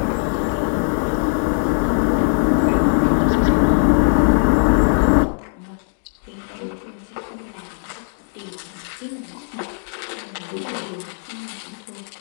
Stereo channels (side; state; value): right; silent; 59 dB below the other